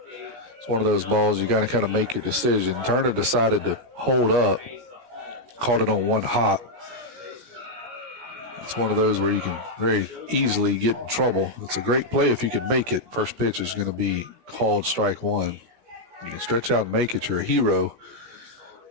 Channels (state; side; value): late; left; 17 ms